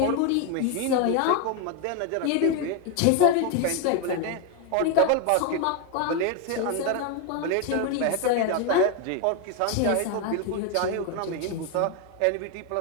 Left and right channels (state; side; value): different; both; correlation 0.01